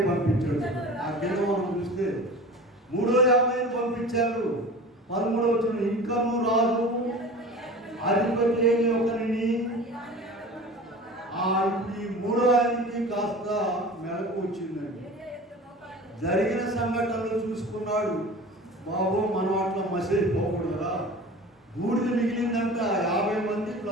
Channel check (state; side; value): normal; both; correlation 0.37